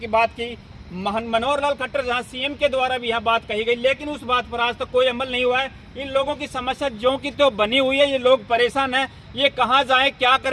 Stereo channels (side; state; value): both; identical; correlation 1.00